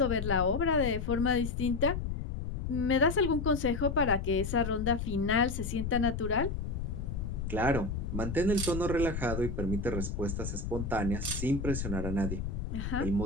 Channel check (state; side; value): noise; left; rumble, 4 dB below the sound